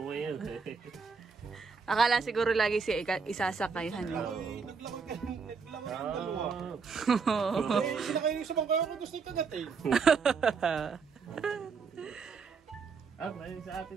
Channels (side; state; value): left; quieter; 5.3 dB